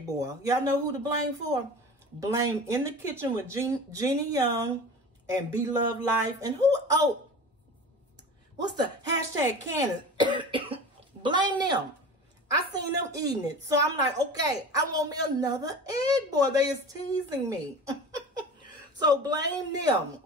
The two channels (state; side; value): normal; both; correlation 0.35